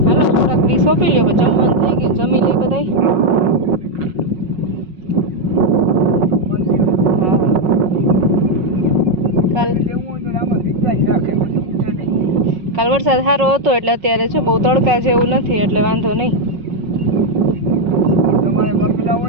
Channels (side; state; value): left; late; 5.4 ms